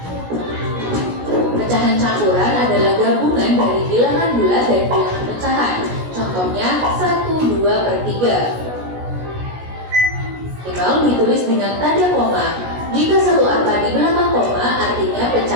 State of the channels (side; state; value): left; late; 16 ms